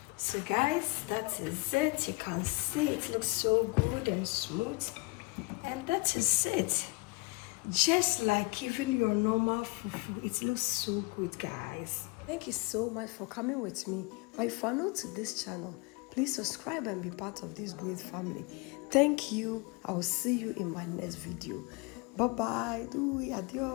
So guys, that is it. You can see it looks so good and smooth. And that is it. Just like even your normal fufu, it looks so good, guys. Thank you so much for coming with me. But if you are new to this channel, please subscribe and be part of this great family. Thank you. I will see you in my next video. Bye bye.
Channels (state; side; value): quieter; right; 26.8 dB